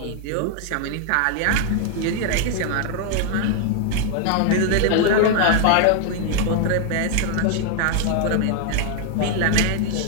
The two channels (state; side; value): different; both; correlation 0.00